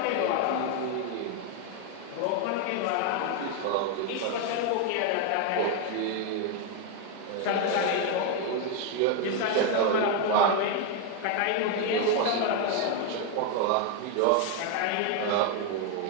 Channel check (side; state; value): both; different; correlation 0.01